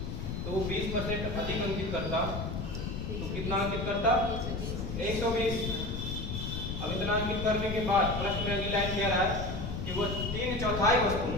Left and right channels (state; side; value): noise; left; rumble, 4 dB below the sound